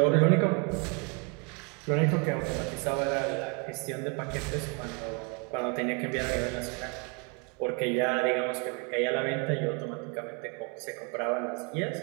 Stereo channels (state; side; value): quieter; left; 34.8 dB